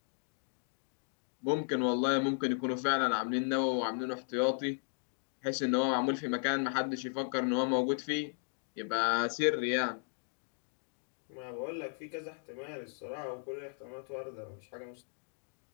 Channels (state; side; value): silent; right; 54 dB below the other